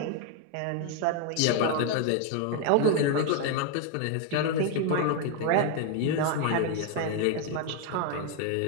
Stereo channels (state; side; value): different; both; correlation 0.01